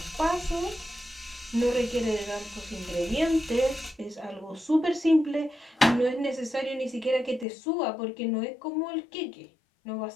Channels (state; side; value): drops out; right; at 7.5 s